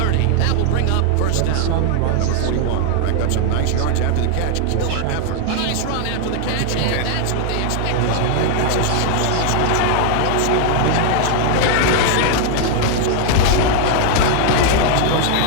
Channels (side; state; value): both; different; correlation 0.00